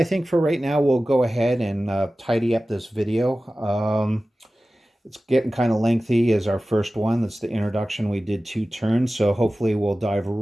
think for right now, we'll go ahead and tidy up this video. It's getting kind of lengthy as our first one. That's the introduction. We did 2 turns, so hopefully we'll dive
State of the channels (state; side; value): normal; both; correlation 0.96